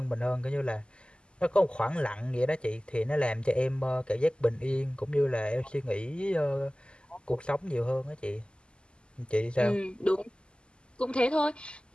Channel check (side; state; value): right; late; 0.050 ms